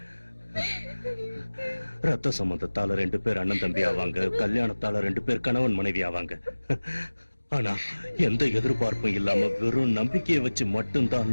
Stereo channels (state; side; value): inverted; both; correlation -1.00